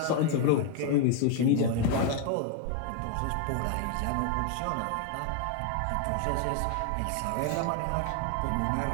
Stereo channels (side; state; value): both; different; correlation 0.01